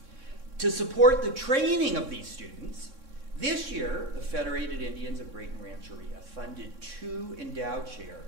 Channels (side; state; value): left; late; 3.6 ms